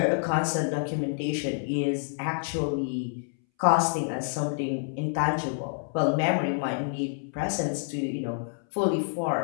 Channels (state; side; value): silent; right; 59 dB below the other